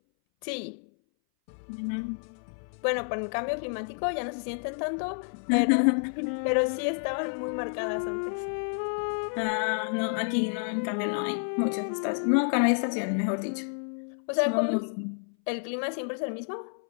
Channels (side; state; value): right; silent; 58 dB below the other